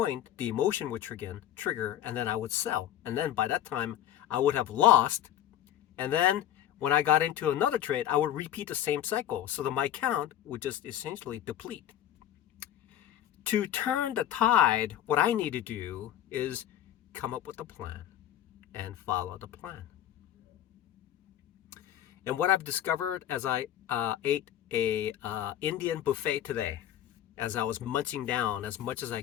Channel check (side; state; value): right; quieter; 11.6 dB